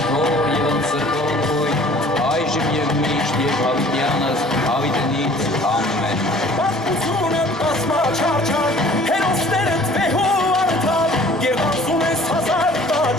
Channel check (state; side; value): normal; both; correlation 0.51